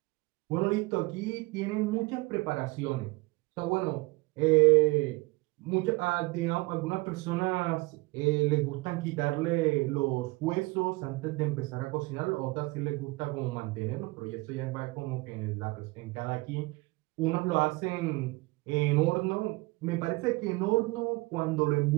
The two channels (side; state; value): left; quieter; 24.0 dB